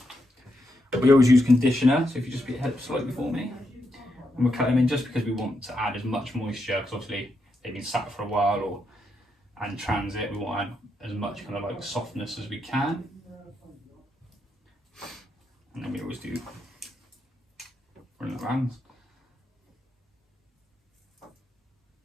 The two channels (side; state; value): both; normal; correlation 0.82